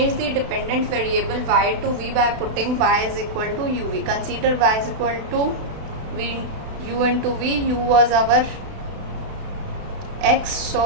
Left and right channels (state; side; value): late; left; 32 ms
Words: the dependent variable y to v by putting y is equal to uv. Consider y is equal to u into v. U was our x,